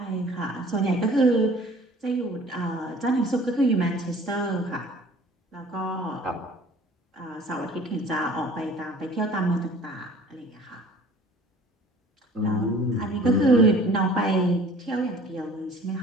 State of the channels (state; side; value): normal; both; correlation 0.49